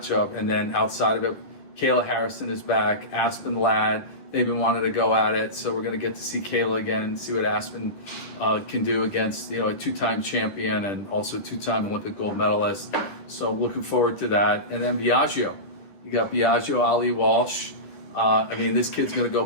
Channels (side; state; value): right; late; 10 ms